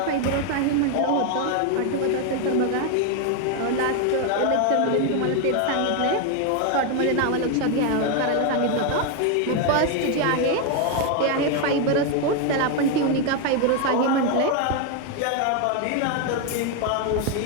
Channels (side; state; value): both; different; correlation 0.01